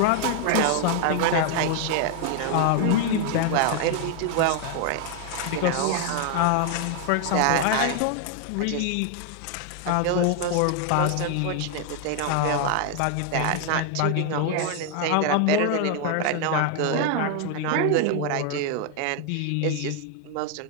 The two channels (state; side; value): different; both; correlation 0.00